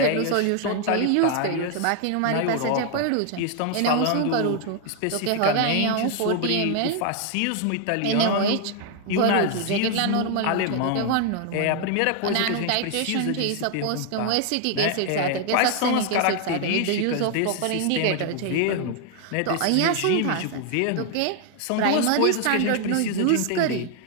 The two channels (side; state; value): both; different; correlation 0.00